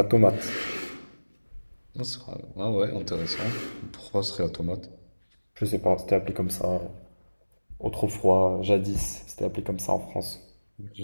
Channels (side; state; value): both; inverted; correlation -1.00